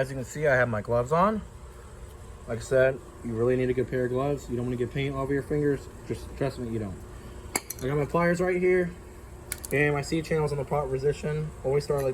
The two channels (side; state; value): both; identical; correlation 1.00